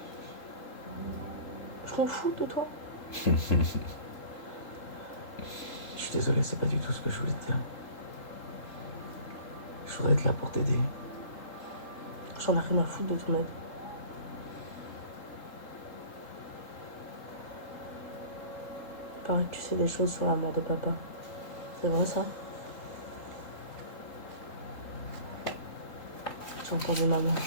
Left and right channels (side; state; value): right; late; 3.8 ms